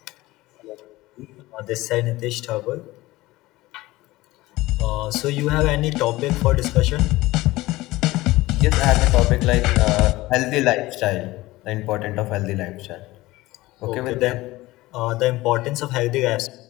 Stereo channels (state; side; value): quieter; right; 18.8 dB